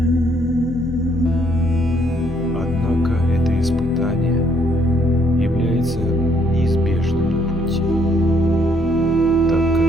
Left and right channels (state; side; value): normal; both; correlation 0.68